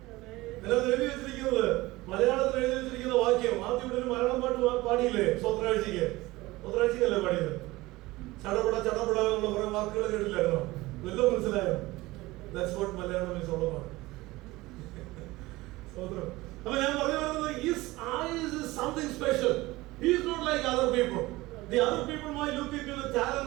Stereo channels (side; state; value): left; quieter; 19.8 dB